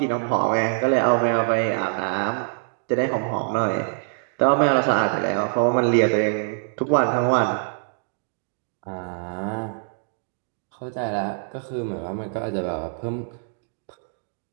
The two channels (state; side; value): silent; left; digital silence